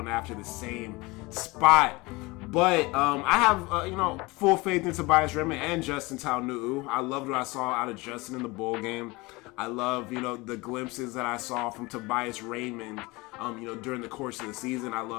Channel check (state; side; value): quieter; right; 23.5 dB